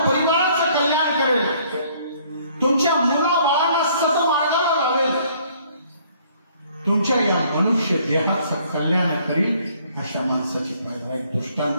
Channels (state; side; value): inverted; both; correlation -0.61